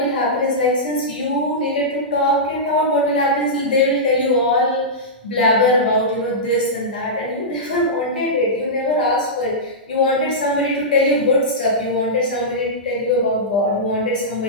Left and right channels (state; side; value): normal; both; correlation -0.13